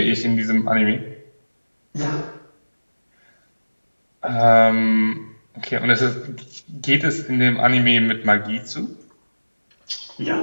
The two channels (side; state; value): both; inverted; correlation -1.00